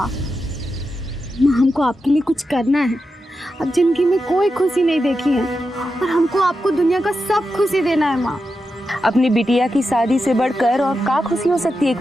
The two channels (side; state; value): both; normal; correlation 0.89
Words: हमको आपके लिए कुछ करना है। अब जिंदगी में कोई खुशी नहीं देखी है और हमको आपको दुनिया का सब खुशी देना है माँ। अपनी बिटिया की शादी से बढ़कर और क्या खुशी हो सकती है एक